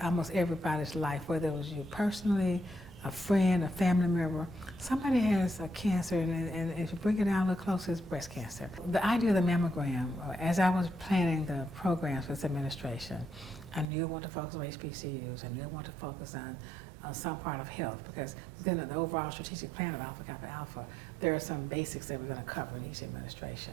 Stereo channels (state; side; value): drops out; left; at 13.9 s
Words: almost everybody's life, whether it was you personally, a friend, a family member. Somebody has a cancer, and if you bring it down a little closer, it's breast cancer. The idea of the mammogram, as I was planning the programs for this administration, I knew I wanted to focus on HBCUs. I knew I wanted to focus on some part of health, because within the overall strategic plan of Alpha Kappa Alpha, there are some basics that we're going to cover in each